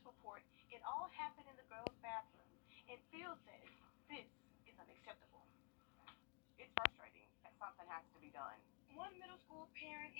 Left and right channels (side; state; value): right; quieter; 37.1 dB